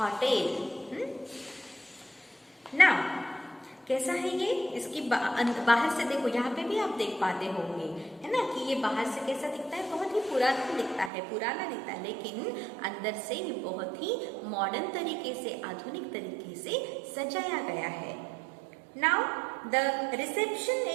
Now कैसा है ये? इसकी बाहर से देखो, यहाँ पे भी आप देख पाते होंगे, है ना, कि ये बाहर से कैसा दिखता है? बहुत ही पुराना दिखता है, पुराना दिखता है, लेकिन अंदर से ये बहुत ही मॉडर्न तरीके से, आधुनिक तरीके से सजाया गया है। Now the reception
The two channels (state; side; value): drops out; left; at 11.1 s